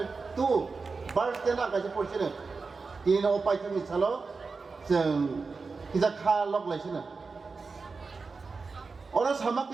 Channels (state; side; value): quieter; left; 4.4 dB